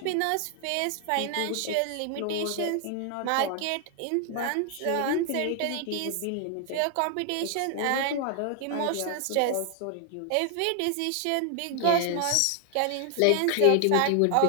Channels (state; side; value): different; both; correlation 0.00